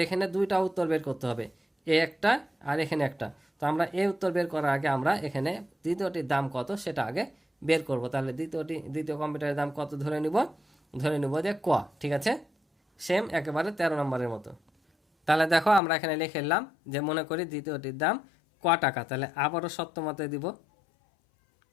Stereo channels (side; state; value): right; drops out; at 15.8 s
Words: এখানে দুইটা উত্তর বের করতে হবে, এ একটা আর এখানে একটা। তো আমরা এই উত্তর বের করার আগে আমরা এখানে দ্বিতীয়টির দাম কত সেটা আগে বের করব। তাহলে দ্বিতীয় কম্পিউটারের দাম কত ধরে নিব যে ক। ঠিক আছে, সেম একেবারে 13 নম্বরের মতো। তাহলে দেখো আমরা এখানে লিখে নিলাম যে মনে করি দ্বিতীয়টির দাম ক টাকা। তাহলে আবারও সত্যমতে দিব,